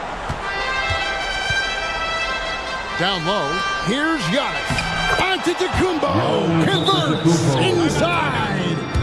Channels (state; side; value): identical; both; correlation 1.00